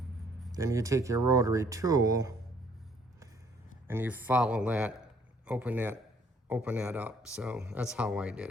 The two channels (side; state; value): both; normal; correlation 0.63